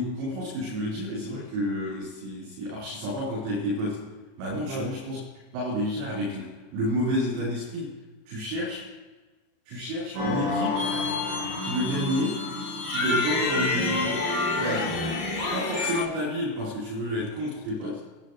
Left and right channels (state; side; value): late; left; 37 ms